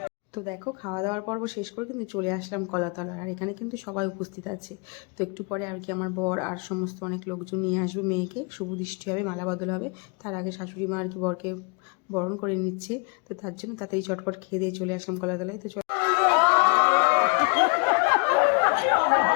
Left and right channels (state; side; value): quieter; right; 32.9 dB